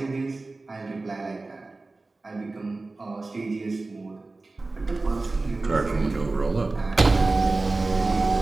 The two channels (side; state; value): left; quieter; 3.4 dB